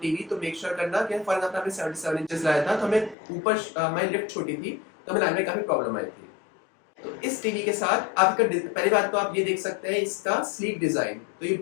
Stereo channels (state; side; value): drops out; right; at 3.2 s